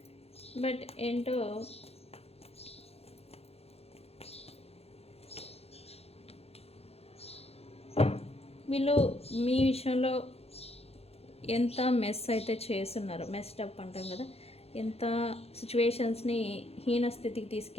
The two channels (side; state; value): right; late; 0.29 ms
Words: బట్ ఏంటో వీళ్ళు మీ విషయంలో ఎంత మెస్ అయితే చేస్తున్నారు, మెస్టప్ అంటాం కదా, ఎంత సిచ్యువేషన్స్ని హీన స్థితికి